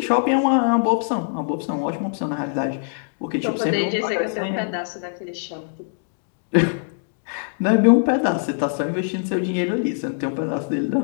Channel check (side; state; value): right; silent; digital silence